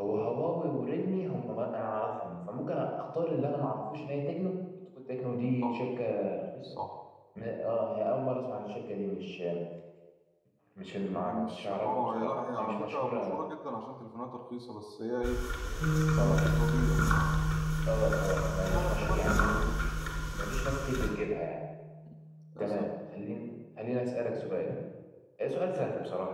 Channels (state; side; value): identical; both; correlation 1.00